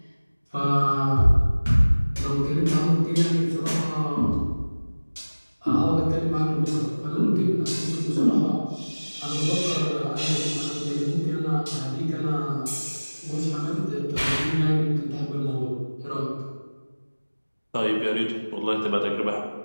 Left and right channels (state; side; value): inverted; both; correlation -1.00